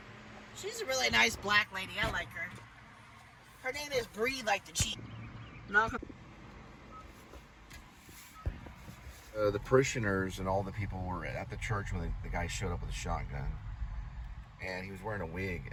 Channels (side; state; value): both; identical; correlation 1.00